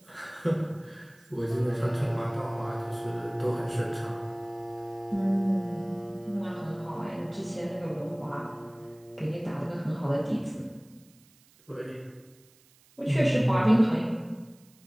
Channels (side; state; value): right; noise; hiss, 29 dB below the sound